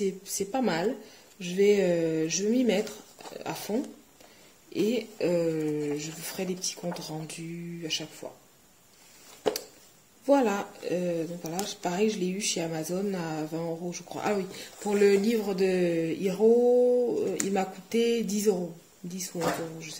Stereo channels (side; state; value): both; identical; correlation 1.00